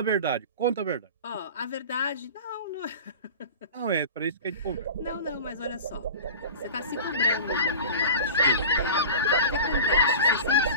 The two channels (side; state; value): both; inverted; correlation -0.35